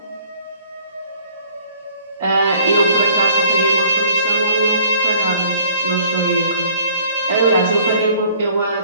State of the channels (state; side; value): inverted; both; correlation -0.56